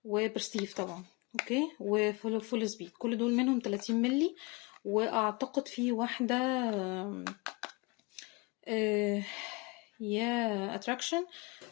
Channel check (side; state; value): right; quieter; 27.1 dB